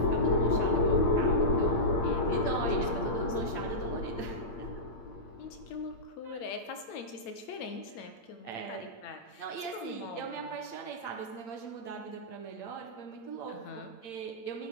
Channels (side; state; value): right; late; 8.8 ms